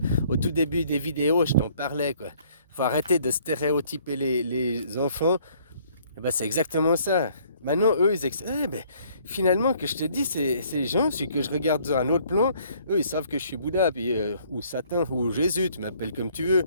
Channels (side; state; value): both; inverted; correlation -0.61